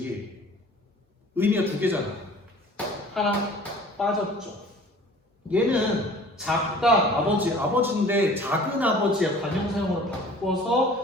의미가 두 개잖아. 하나 빠졌죠. 얘는 작다 아버지, 아버지인데 작은 아버지의 관형사형으로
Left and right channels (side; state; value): both; normal; correlation 0.47